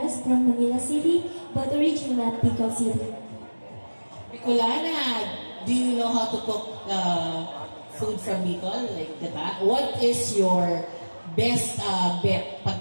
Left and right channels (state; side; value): inverted; both; correlation -1.00